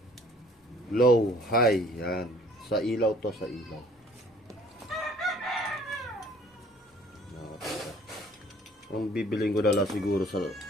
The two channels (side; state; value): both; normal; correlation 0.54